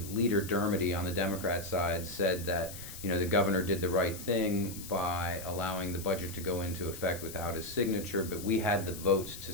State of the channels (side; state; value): left; noise; hiss, 12 dB below the sound